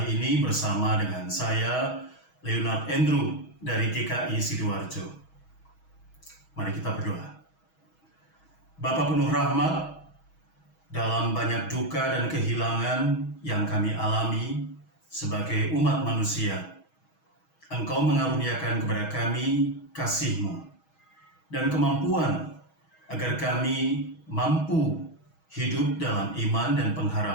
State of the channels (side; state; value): right; late; 6.3 ms